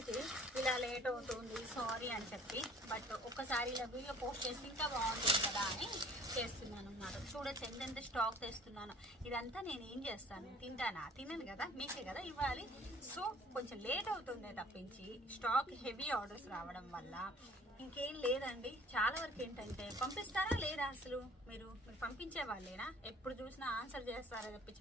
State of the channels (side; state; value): both; normal; correlation 0.52